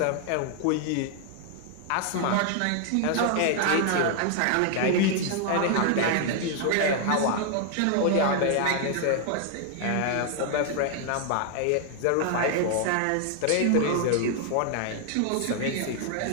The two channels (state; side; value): different; both; correlation 0.00